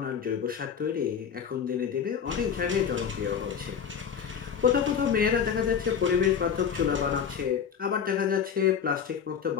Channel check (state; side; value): quieter; right; 7.4 dB